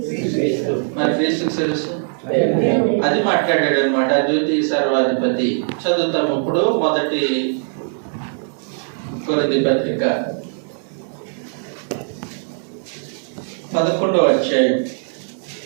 మరి క్రీస్తుకి శిరస్సు అది మాట్లాడాడు అనమాట. అద్వితీయ సర్వాధిపతి చదువుతాము ఇప్పుడు. మొదటి కొరింథీ పత్రిక 11వ అధ్యాయం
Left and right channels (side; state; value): left; silent; 56 dB below the other